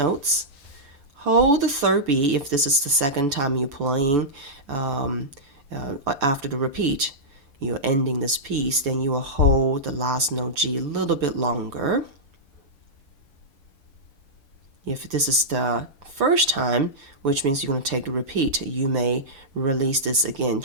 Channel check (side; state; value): left; late; 7.1 ms